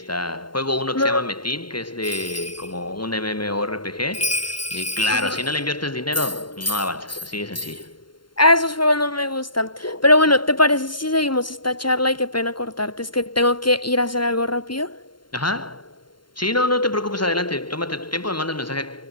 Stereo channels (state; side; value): late; right; 0.72 ms